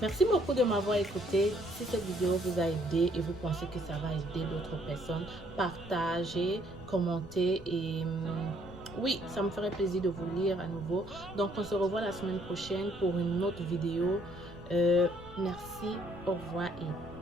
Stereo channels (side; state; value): left; noise; rumble, 18 dB below the sound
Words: merci beaucoup de m'avoir écouté. Si cette vidéo vous a aidé et vous pensez que ça va aider d'autres personnes, partagez, commentez et... oui, ça me ferait plaisir de vous lire à nouveau. Donc, on se revoit la semaine prochaine pour une autre vidéo. Merci, au revoir